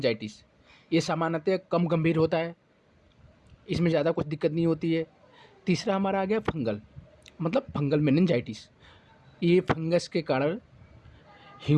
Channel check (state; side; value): identical; both; correlation 1.00